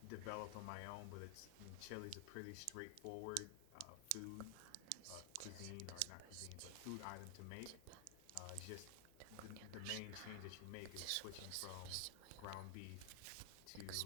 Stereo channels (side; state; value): both; different; correlation 0.00